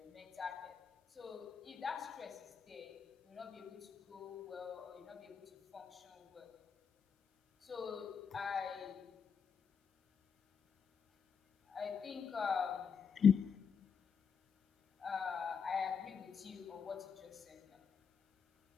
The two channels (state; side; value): quieter; right; 6.6 dB